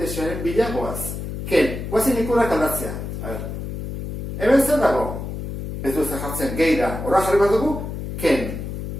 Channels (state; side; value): noise; left; hum, 6 dB below the sound